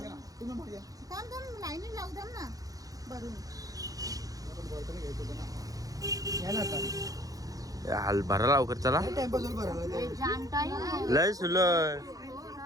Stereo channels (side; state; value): left; late; 0.17 ms